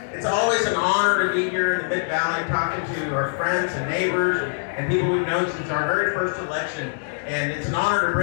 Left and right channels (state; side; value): silent; right; digital silence